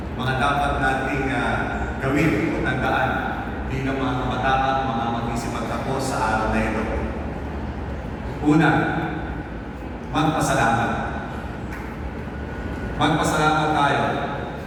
mga dapat nating gawin o tandaan bilang mga kabataan, mga mag-isipagtapos sa araw na ito? Una, magpasalamat. Magpasalamat tayo.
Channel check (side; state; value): both; identical; correlation 1.00